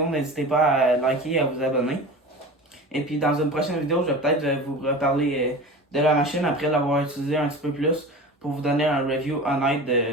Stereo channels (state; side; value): normal; both; correlation 0.33